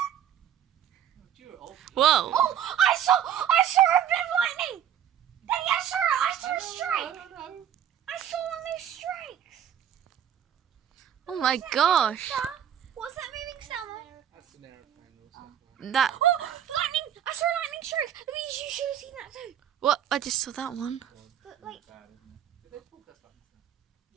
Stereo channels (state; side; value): quieter; left; 9.8 dB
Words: Whoa. Oh, I saw a bit of lightning. Daddy, I saw a strike. I saw one of those strikes. Oh my gosh. What's that moving sound? That's an aeroplane or something. That... Oh, lightning! I saw a lightning strike. Louise, you should have seen that too. What? I just saw that one. But like, Bad, isn't it? Did they broadcast like that?